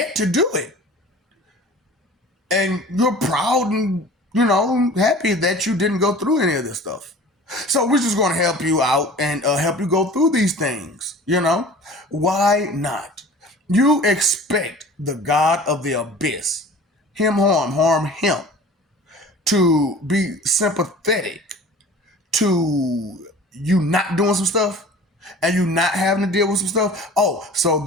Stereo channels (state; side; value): normal; both; correlation 0.43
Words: to do it. And you're proud and, happy that you didn't go through any of this stuff. So we're just going to help you out and help you go through these things, Why not? You expect the God of the abyss, harm him, to be sympathetic to you not doing some stuff and you not having to deal with some stuff. Oh, so